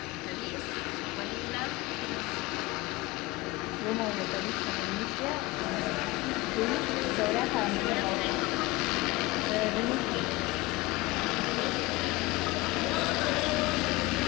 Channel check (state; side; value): quieter; right; 21.5 dB